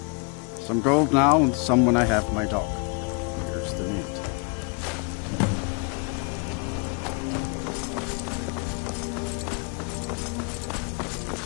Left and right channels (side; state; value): right; quieter; 34.3 dB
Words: Some gold now and some when I have my dog. Here's the meat.